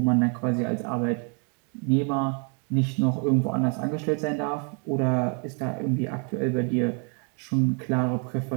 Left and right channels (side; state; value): left; quieter; 38.5 dB